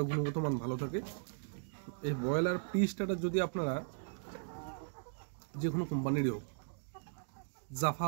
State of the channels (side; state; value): left; silent; digital silence